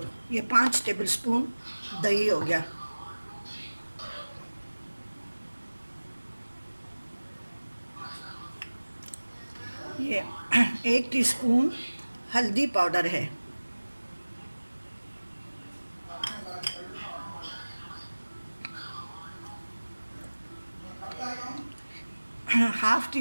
ये 5 टेबल स्पून दही हो गया। ये 1 टीस्पून हल्दी पाउडर है। हाफ़ टी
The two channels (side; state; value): both; inverted; correlation -1.00